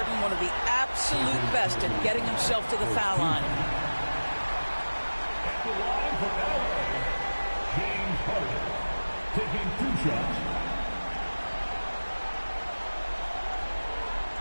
one of the absolute best at getting himself to the foul line. James Harden taking 2 shots.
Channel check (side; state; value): both; inverted; correlation -1.00